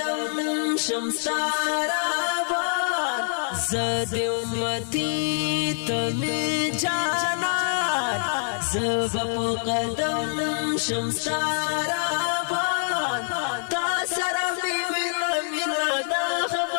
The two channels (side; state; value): right; silent; 62 dB below the other